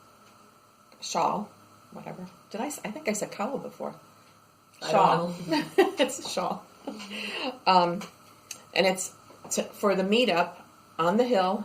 shawl, whatever. I think I said cowl before. Shawl. It's a shawl. And it's for the meetup on the hill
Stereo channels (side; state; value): both; identical; correlation 1.00